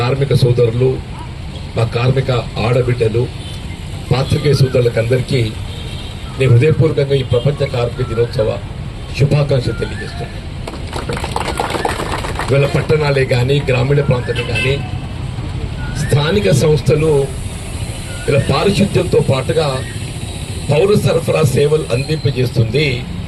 కార్మిక సోదరులు, మా కార్మిక ఆడబిడ్డలు, పాత్రికేయ సోదరులకు అందరికీ నేను హృదయపూర్వకంగా ఈ ప్రపంచ కార్మిక దినోత్సవ శుభాకాంక్షలు తెలియజేస్తున్నాను. ఇవాళ పట్టణాలే కానీ, గ్రామీణ ప్రాంతాలే కానీ, స్థానిక సంస్థలు ఇలా పారిశుద్ధ్యంతో పాటుగా పౌర సరఫరా సేవలు అందింపజేస్తుంది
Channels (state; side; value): identical; both; correlation 1.00